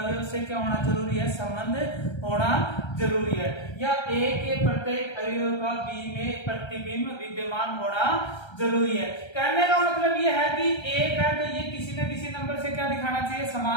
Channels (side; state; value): right; late; 1.3 ms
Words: से क्या होना जरूरी है, संबंध होना जरूरी है, या ए के प्रत्येक अवयव का बी में प्रतिबिंब विद्यमान होना जरूरी है। कहने का मतलब यह है कि एक है तो ये किसी न किसी नंबर से क्या दिखाना चाहिए,